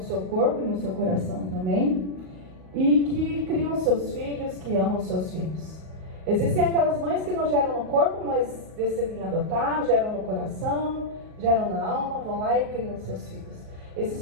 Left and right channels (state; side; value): late; left; 38 ms